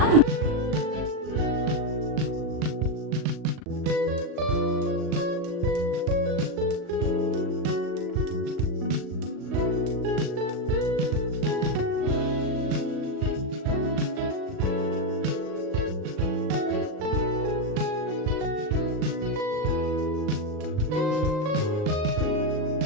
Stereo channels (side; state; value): left; late; 38 ms